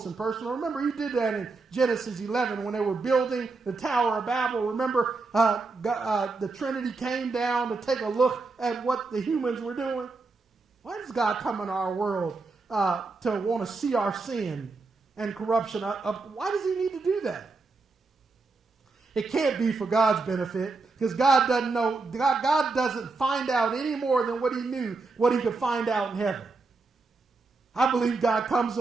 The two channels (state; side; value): quieter; left; 3.9 dB